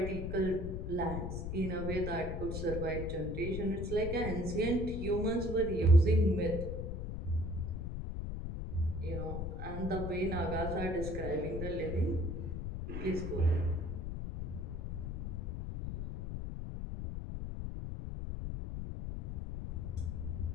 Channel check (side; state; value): left; noise; rumble, 4 dB below the sound